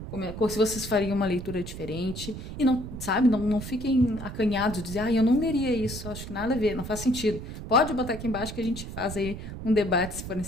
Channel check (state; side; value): noise; right; rumble, 9 dB below the sound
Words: se vocês fariam uma leitura diferente. E não, sabe, não fiquem acanhados de dizer, eu não leria isso, acho que nada a ver, não faz sentido. Pode botar aqui embaixo que a gente faz aí um debate se for